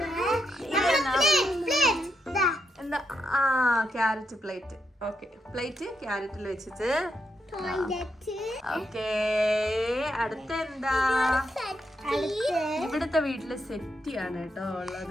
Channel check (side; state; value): both; normal; correlation 0.81